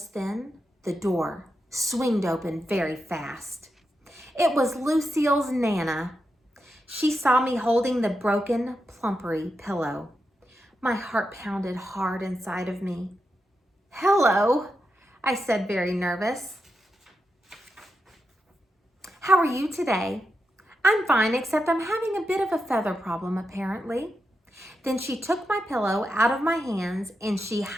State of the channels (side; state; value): both; normal; correlation 0.87